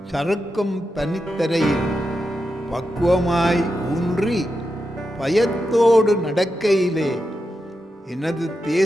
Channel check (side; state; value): both; normal; correlation 0.88